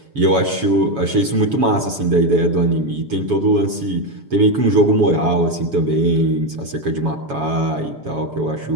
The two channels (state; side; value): late; left; 7.1 ms